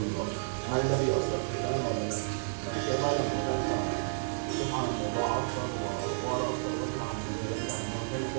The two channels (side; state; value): left; silent; digital silence